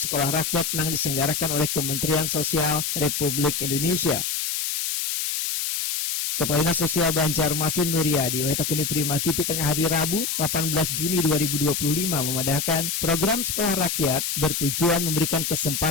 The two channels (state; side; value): noise; left; hiss, 1 dB below the sound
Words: rakyat yang diselenggarakan oleh Kementerian Sosial Republik Indonesia. Kepala Dinas Sosial Banjarmasin Nuryadi Wahitakuni Prima TV tengah hari Rabu 18 Juni 2025 memadahkan program sekolah rakyat bertujuan memberikan